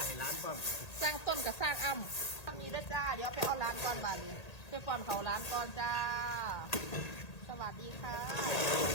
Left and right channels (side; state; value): right; late; 1.8 ms